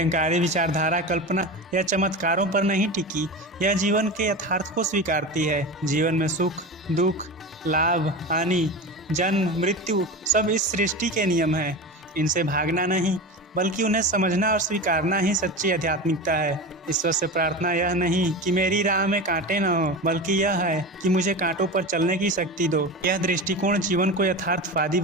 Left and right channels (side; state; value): both; normal; correlation 0.26